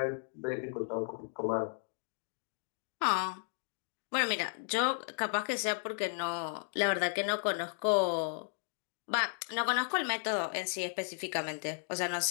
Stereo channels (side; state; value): right; silent; digital silence